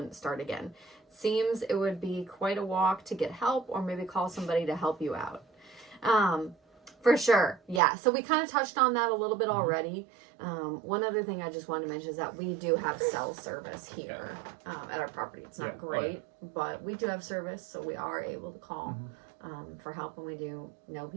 start again? Seems it would be quite a walk to get help, or maybe call somebody to help you out. For sure. Yeah. So we kind of touched on that a little bit already. One other thing I just wanted to mention is that we do have cell service here at our property. It's not great, but we do have service, so we are able to call for help, and we do know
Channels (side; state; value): left; drops out; at 7.8 s